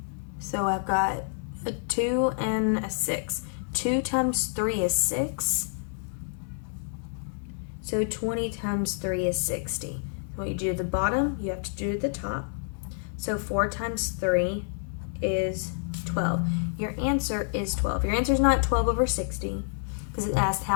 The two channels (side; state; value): right; silent; 59 dB below the other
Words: So I've got a 2 and a 6. 2 times 3 is 6. So 20 times 3 is 60. What you do at the bottom, you have to do at the top. So 4 times 3 is 12. Your answer is 12. Your answer is not 12 over 60 because it asks